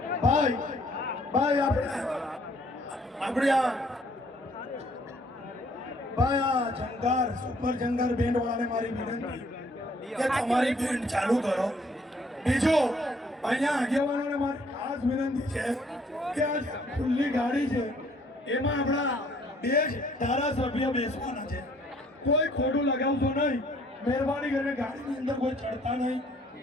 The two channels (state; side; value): normal; both; correlation 0.62